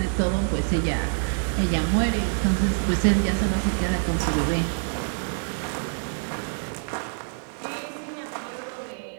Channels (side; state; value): left; silent; 60 dB below the other